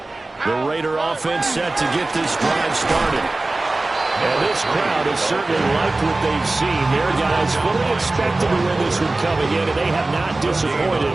The Raider offense set to get this drive started. And this crowd has certainly liked what they've seen. Their guys fully expected to win this one coming in, and they have not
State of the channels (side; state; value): left; quieter; 3.0 dB